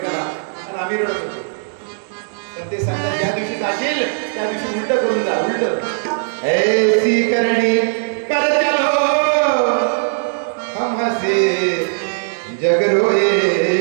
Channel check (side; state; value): left; silent; digital silence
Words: आणि आम्ही रडत होतो. पण ते सांगतात ज्या दिवशी जाशील त्या दिवशी उलट करून जा, उलट ऐसी करणी कर चलो हम हसे जग रोए.